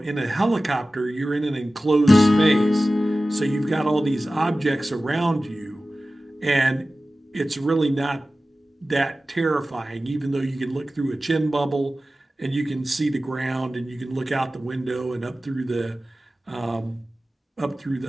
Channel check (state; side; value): normal; both; correlation 0.96